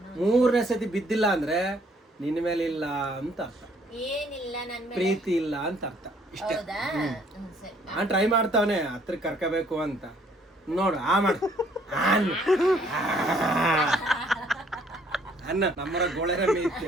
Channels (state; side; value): normal; both; correlation 0.63